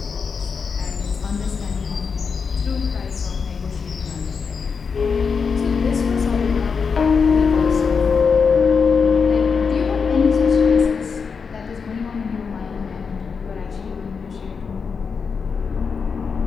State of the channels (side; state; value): right; quieter; 5.6 dB